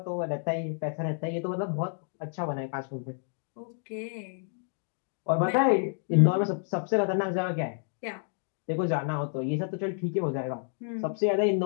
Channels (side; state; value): right; silent; 58 dB below the other